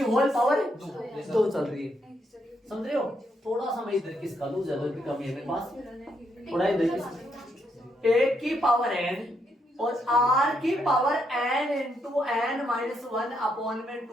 पावर 2 चल रही है, समझ रहे हो। थोड़ा सा मैं इधर किसका लूं, जगह की कमी है मेरे पास, थोड़ा इधर किसका, a की पावर n और r की power n into n minus 1 upon में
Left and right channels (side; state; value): both; normal; correlation 0.77